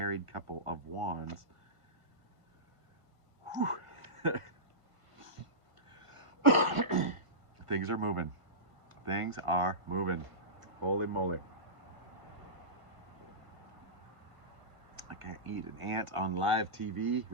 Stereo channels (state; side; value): late; left; 1.5 ms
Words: couple of Wands. Things are moving. Things are moving. Holy moly. I can't eat an ant on live TV